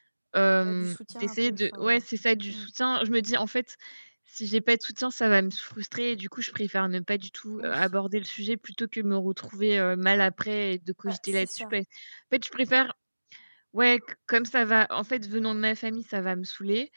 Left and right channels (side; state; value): both; inverted; correlation -1.00